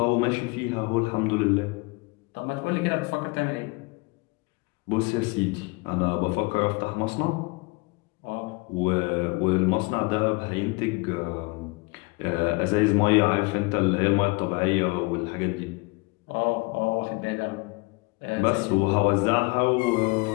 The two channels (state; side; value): quieter; right; 26.7 dB